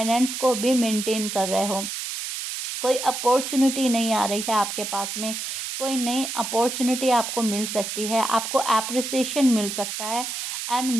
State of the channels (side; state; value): right; noise; hiss, 5 dB below the sound